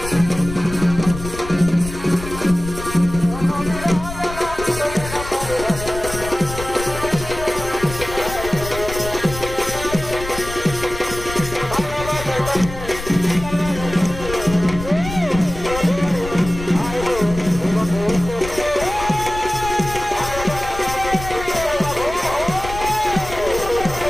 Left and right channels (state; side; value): noise; left; rumble, 10 dB below the sound